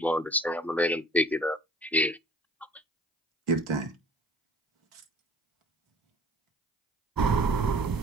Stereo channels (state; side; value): normal; both; correlation 0.51